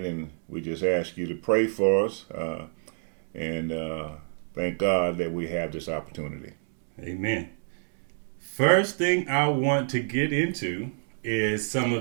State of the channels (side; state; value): left; silent; 60 dB below the other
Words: And we just ask you to pray for us and thank God that we have this opportunity. Amen. First thing I want to get into is some